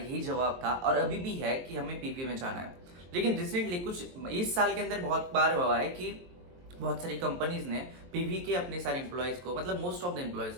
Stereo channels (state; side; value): late; left; 23 ms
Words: जवाब था और अभी भी है कि हमें पीवी में जाना है। लेकिन रिसेंटली कुछ इस साल के अंदर बहुत बार हुआ है कि बहुत सारी कंपनीज ने पीवी के अपने सारे एम्प्लॉयज को, मतलब मोस्ट ऑफ द एम्प्लॉयज